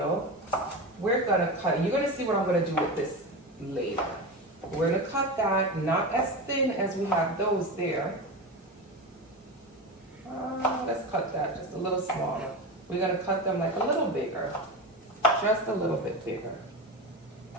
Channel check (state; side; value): normal; both; correlation 0.22